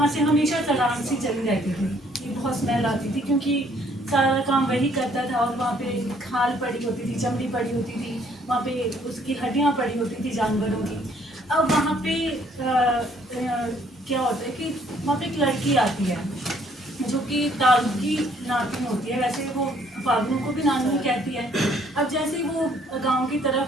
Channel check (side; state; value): both; normal; correlation 0.63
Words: से हमेशा सड़ान सी चली रहती थी, ये बहुत स्मेल आती थी क्योंकि सारा काम वही करता था। और वहाँ पे खाल पड़ी होती थी, चमड़ी पड़ी होती थी, वहाँ पे उसकी हड्डियाँ पड़ी होती थी जानवरों की। अब वहाँ पे क्या होता है कि वहाँ पे एक लड़की आती है जो कि तारू की नातिन होती है, वैसे वो फागनू को भी नानी कहती है। अब जैसे ही वो गांव की